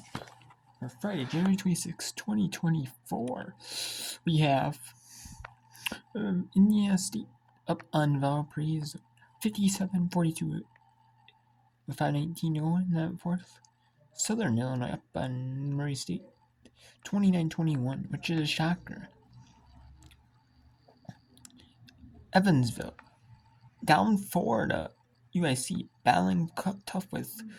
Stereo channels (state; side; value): identical; both; correlation 1.00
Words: for Friday, January 26, 2024. We have Indiana State up on Valparaiso, 57-42 with 5:19 to go in that fourth. Southern Illinois up on Murray State, 29-21, which is a shocker. Evansville down 4 to UIC, battling tough with